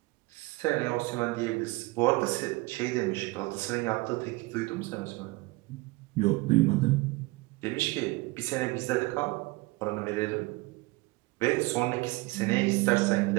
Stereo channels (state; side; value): quieter; left; 22.9 dB